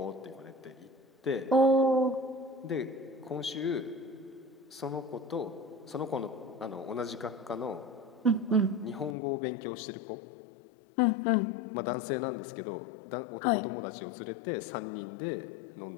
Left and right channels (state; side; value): drops out; right; at 9.2 s